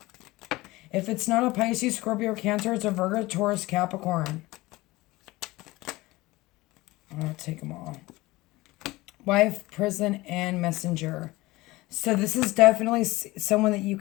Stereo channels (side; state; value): right; quieter; 20.1 dB